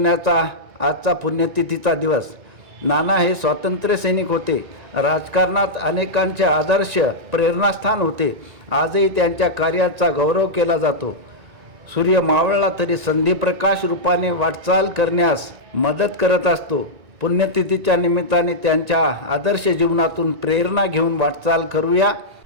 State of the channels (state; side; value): late; left; 1.9 ms